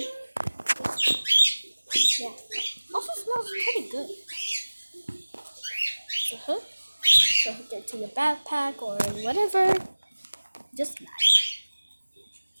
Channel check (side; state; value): both; inverted; correlation -1.00